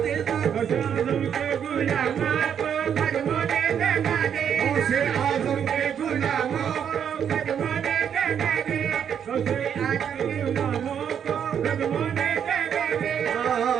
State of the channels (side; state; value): left; quieter; 8.3 dB